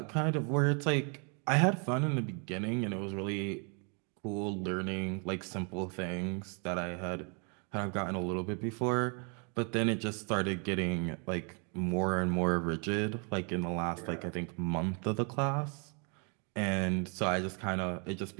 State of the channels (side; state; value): left; quieter; 37.1 dB